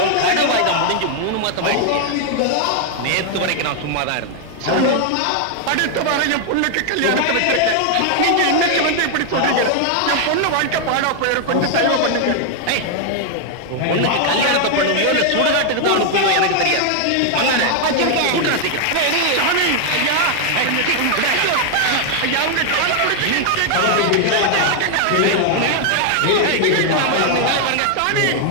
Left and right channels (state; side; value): different; both; correlation 0.00